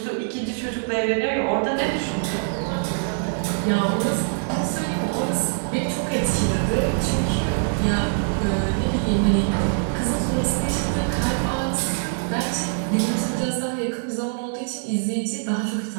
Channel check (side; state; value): left; silent; 63 dB below the other